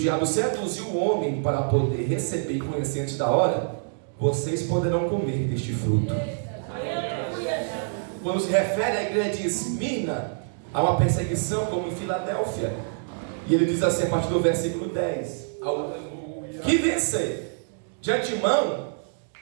seduziu o homem para poder receber e conhecer antes da hora, vocês poderão comer deste fruto. Quando se refere à igreja de Esmirna, há uma perseguição como em Filadélfia. E ele diz assim a partir do versículo 10: ao que vencer. De antemão,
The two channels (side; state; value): left; silent; digital silence